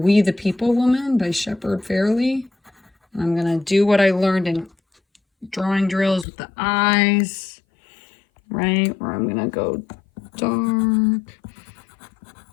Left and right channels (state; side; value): drops out; right; at 6.2 s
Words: the People woman by Shepard Fairey. And I'm going to do what I learned in drawing drills with the eyes, right? Where I'm going to go dark.